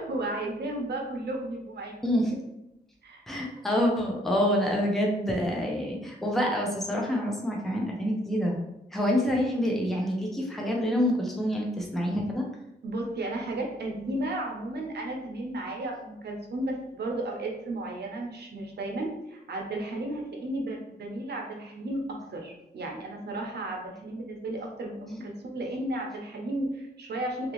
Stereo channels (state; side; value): normal; both; correlation 0.64